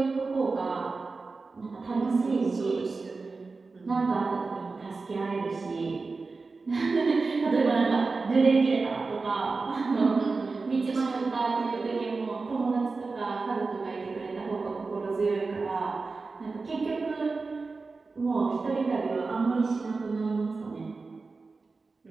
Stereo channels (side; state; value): left; quieter; 4.1 dB